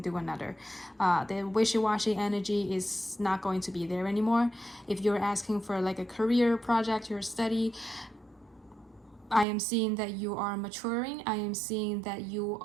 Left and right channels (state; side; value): drops out; left; at 9.5 s